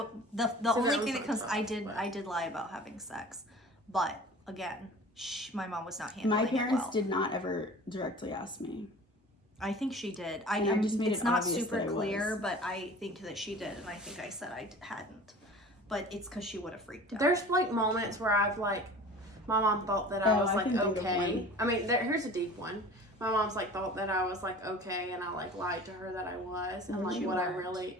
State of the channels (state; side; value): normal; both; correlation 0.41